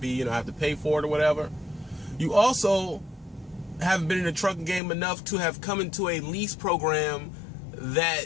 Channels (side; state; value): right; drops out; at 4.8 s